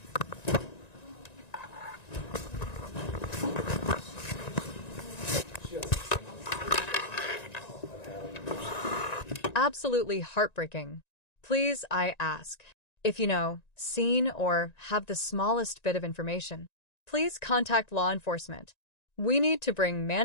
Absolutely heartbreaking. Please, I ask. If you know, seen, or have the smallest bit of information, please contact law enforcement. We need to bring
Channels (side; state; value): right; late; 1.9 ms